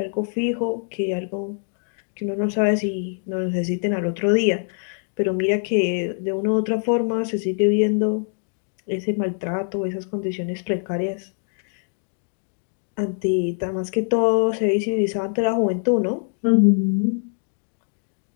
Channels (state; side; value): silent; right; 59 dB below the other